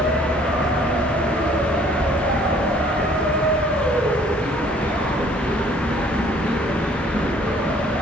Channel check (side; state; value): both; normal; correlation 0.58